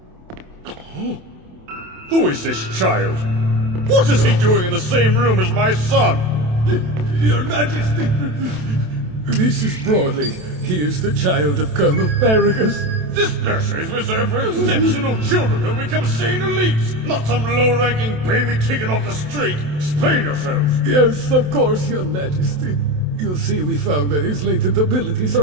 Oh. Who is this child? What is he doing in the same room as my son? Your Majesty, this is Broly. He is the child of Colonel Paragus. This nursery is reserved for exceptional children who become Saiyan elites, not some low-ranking baby taken off the street. Explain yourselves. Yes, of course, Your Majesty. You'll see we found that his latent abilities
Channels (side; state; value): left; late; 27 ms